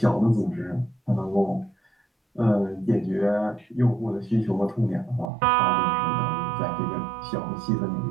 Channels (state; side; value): drops out; left; at 5.3 s